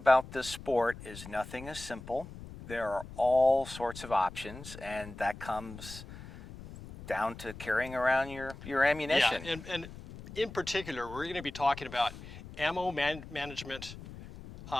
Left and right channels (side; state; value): left; noise; rumble, 14 dB below the sound